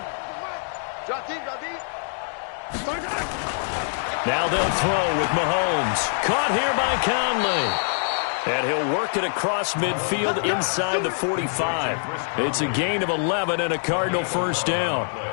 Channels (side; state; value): right; silent; 62 dB below the other